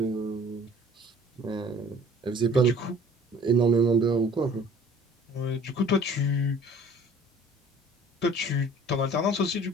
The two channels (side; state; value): both; normal; correlation 0.51